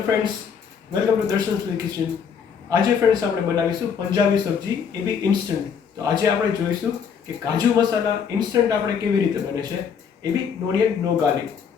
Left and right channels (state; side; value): quieter; right; 7.0 dB